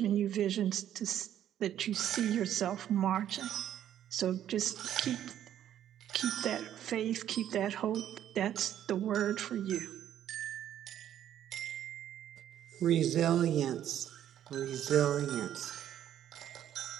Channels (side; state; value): left; quieter; 10.9 dB